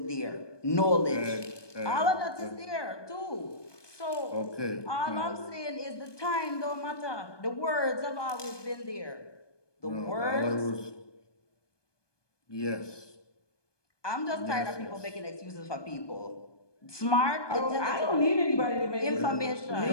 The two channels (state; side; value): late; right; 1.2 ms